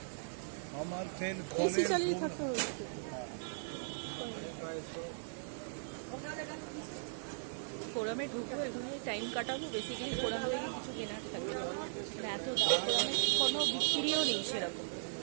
আমার ফ্যান এসি চালিয়ে থাকতে হচ্ছে। ফোরামে ঢুকবো, এখানে টাইম কাটাবো, বেসিক্যালি ফোরাম থেকে কিছু কেনার থাকবে। মানে এত দাম, ফোরামে কোনো বিক্রিও নেই সেরকম,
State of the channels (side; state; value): left; silent; digital silence